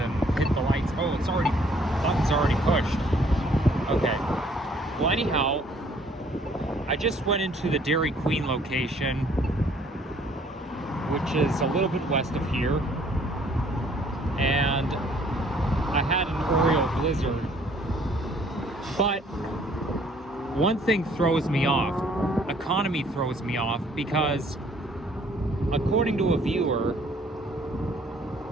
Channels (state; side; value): normal; both; correlation 0.60